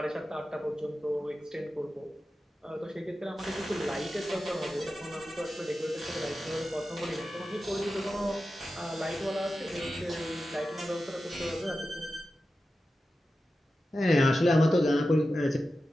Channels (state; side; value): normal; both; correlation 0.92